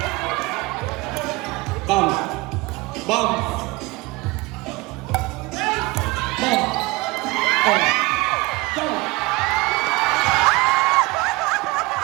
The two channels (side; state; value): left; quieter; 23.1 dB